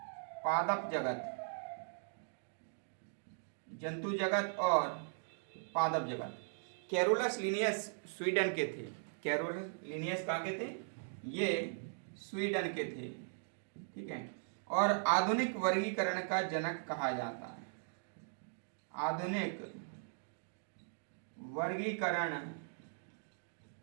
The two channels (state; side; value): silent; left; digital silence